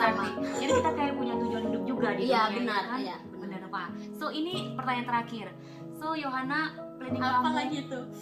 Jadi kita kayak punya tujuan hidup juga di Iya, dunia benar, ini kan? iya, benar. Benar Pak. So ini pertanyaan terakhir. So Yohana, planning Apa kamu lagi tuh?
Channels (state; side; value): identical; both; correlation 1.00